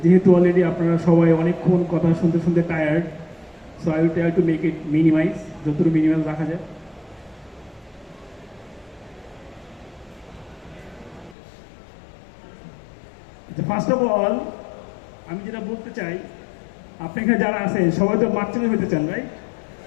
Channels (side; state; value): right; drops out; at 11.4 s